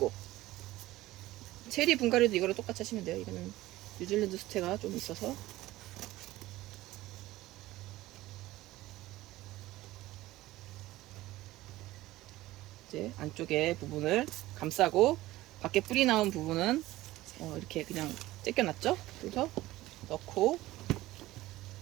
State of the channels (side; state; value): left; quieter; 17.0 dB